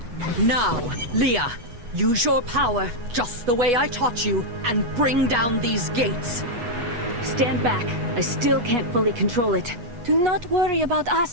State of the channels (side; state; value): left; late; 8.3 ms